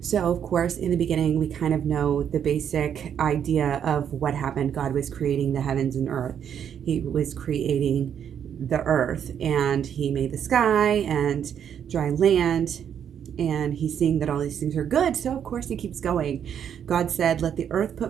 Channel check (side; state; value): left; quieter; 8.7 dB